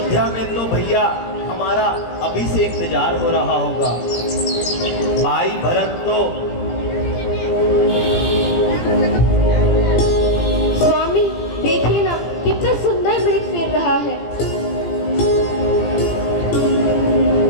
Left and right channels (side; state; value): right; late; 17 ms